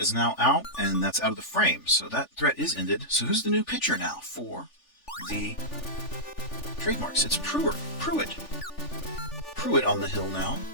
now out, and that's out of the frame. So that threat is ended. So who's the new pitcher now for the Trademarks? It's Pruitt. Pruitt on the hill now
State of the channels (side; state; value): right; late; 3.4 ms